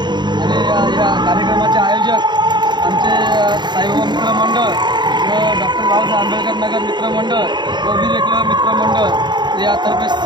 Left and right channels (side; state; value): left; late; 0.21 ms